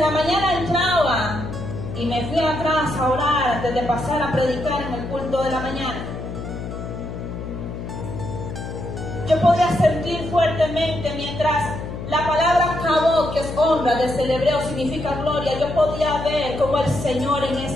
la mañana entraba y me fui atrás a orar antes de pasar a predicar en el culto de la mañana, yo podía sentir fuertemente, mientras la palabra kabod, que es honra, desde el hebreo significa gloria, yo podía ver cómo el Señor en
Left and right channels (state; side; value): noise; left; hum, 8 dB below the sound